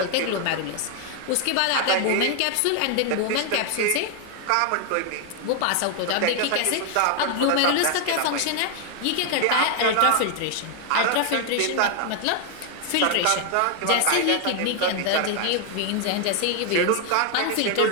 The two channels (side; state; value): both; different; correlation 0.00